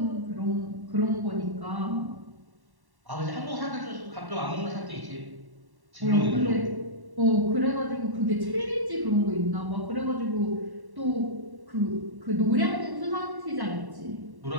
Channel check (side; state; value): left; late; 1.1 ms